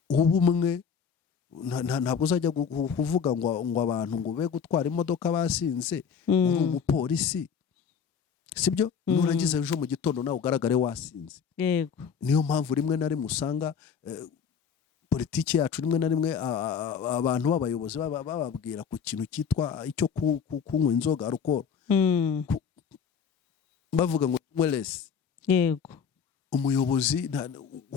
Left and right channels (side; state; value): right; quieter; 6.8 dB